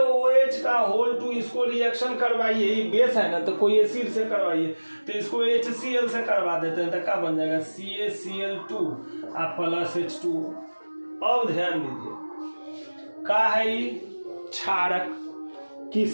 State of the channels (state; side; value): inverted; both; correlation -1.00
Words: का होल 2, इसको रिएक्शन करवाइए, ये बेस है ना तो कोई एसिड से करवाइए, तो इसको HCl से करवा देते हैं तो क्या बन जाएगा, CaCl2 + H2O। अब ध्यान दीजिए क्या है ये, क्षारक